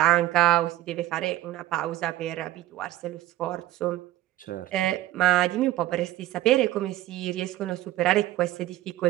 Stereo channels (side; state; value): left; quieter; 15.1 dB